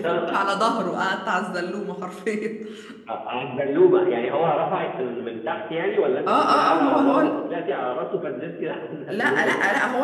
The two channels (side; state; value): both; identical; correlation 1.00